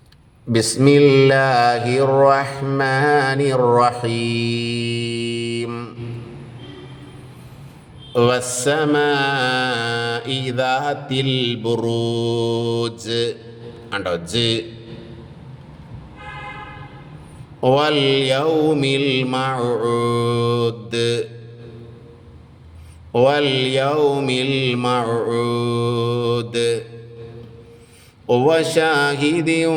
ബിസ്മില്ലാഹിർ റഹ്മാനിർ റഹീം. വസ്സമാഇ ദാത്തിൽ ബുറൂജ്. കണ്ടോ? ജ്. വൽ യൗമിൽ മൗഊദ്. വൽ യൗമിൽ മൗഊദ്. വശാഹിദിൻ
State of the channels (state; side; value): identical; both; correlation 1.00